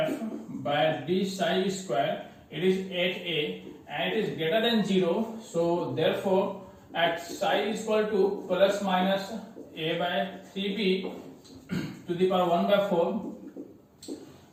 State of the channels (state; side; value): identical; both; correlation 1.00